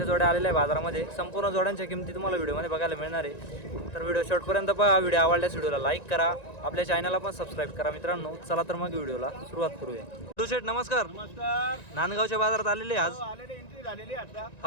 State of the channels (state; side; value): late; right; 1.9 ms